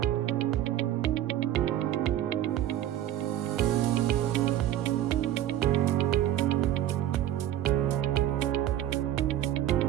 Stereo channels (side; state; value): left; quieter; 12.3 dB